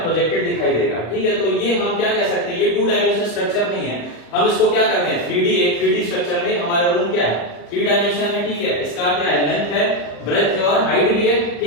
प्रोजेक्टेड दिखाई देगा। ठीक है, तो ये हम क्या कह सकते हैं, ये 2 डायमेंशनल स्ट्रक्चर नहीं है, हम इसको क्या करते हैं, 3D। एक 3D स्ट्रक्चर में हमारा रूम क्या है, 3 डायमेंशन में। ठीक है, इसका क्या है, लेंथ है, ब्रेथ है और हाइट भी है।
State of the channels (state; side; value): late; right; 35 ms